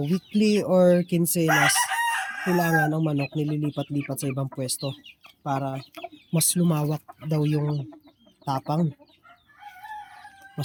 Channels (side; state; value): both; identical; correlation 1.00